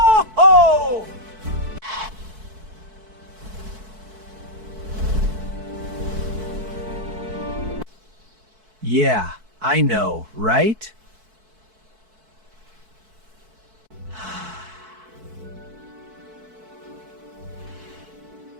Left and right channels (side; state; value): left; late; 4.6 ms